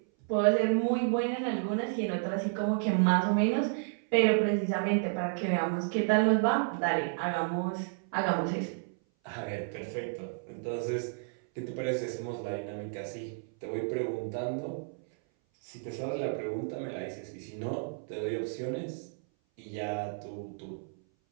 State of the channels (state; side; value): silent; left; 57 dB below the other